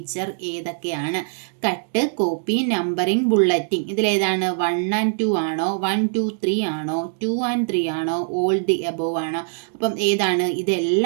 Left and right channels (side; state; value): left; silent; digital silence